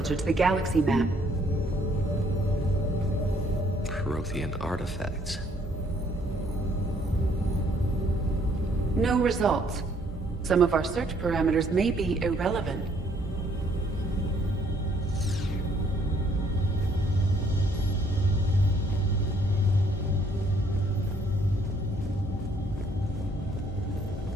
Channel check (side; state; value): both; normal; correlation 0.65